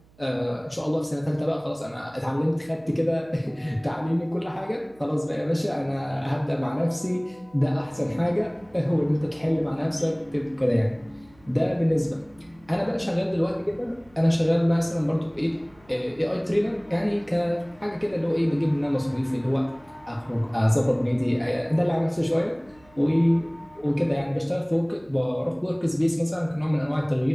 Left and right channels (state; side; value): noise; right; hum, 29 dB below the sound